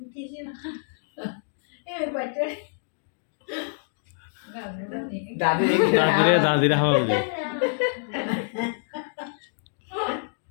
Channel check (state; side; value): silent; right; 61 dB below the other